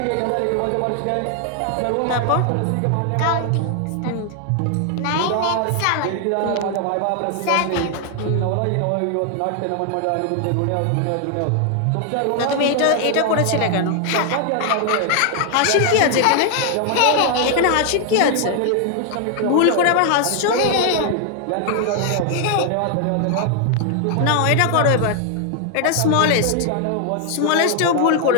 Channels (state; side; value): different; both; correlation 0.00